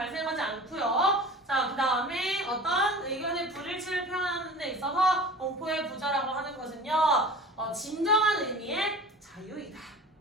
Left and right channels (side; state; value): both; normal; correlation 0.39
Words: 않고요. 자, 그 다음에 어떤 의견의 불일치를 표현하는 데 있어서 공포의 부자라고 하는 것은요. 진정한 의미의 자유이다.